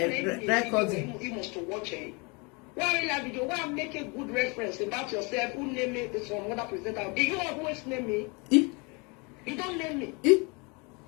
recording. You must watch it. Why will I video? Why make a good reference about yourself? Who name me? This one, what I present out. Do you always name me? You don't name me.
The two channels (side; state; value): right; quieter; 30.0 dB